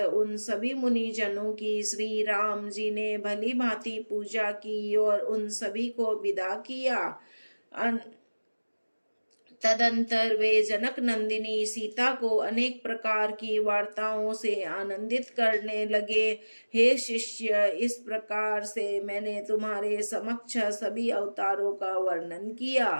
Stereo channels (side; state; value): both; inverted; correlation -1.00